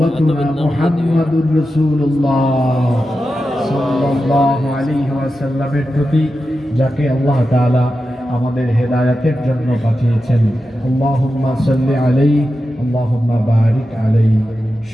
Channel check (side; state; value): both; normal; correlation 0.91